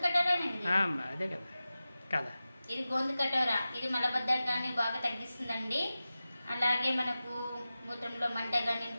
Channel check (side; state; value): both; inverted; correlation -0.95